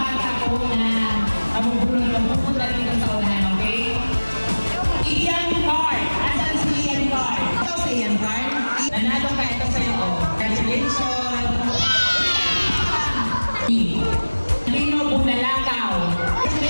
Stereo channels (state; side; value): inverted; both; correlation -1.00